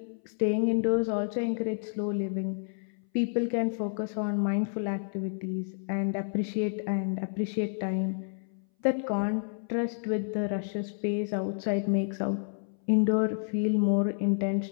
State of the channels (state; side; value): silent; right; 58 dB below the other